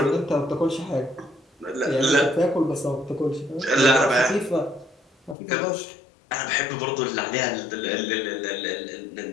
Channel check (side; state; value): right; drops out; at 5.4 s